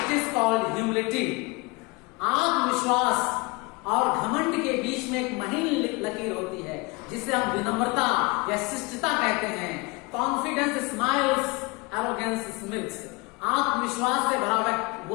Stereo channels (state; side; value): quieter; right; 27.0 dB